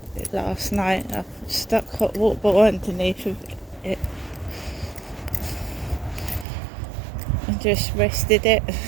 last night. I stuck hot water bottle underneath of it and just rested it.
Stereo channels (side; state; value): left; drops out; at 6.5 s